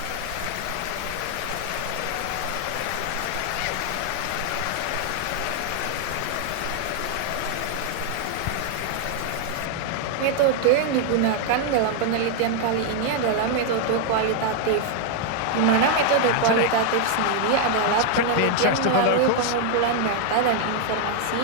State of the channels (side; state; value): both; different; correlation 0.00